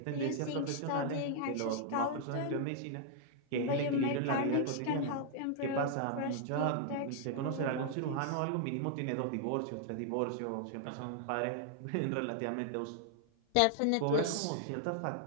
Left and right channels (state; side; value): different; both; correlation 0.00